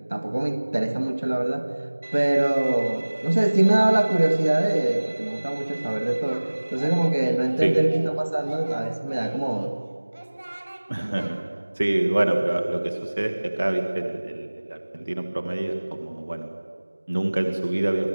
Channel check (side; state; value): both; inverted; correlation -1.00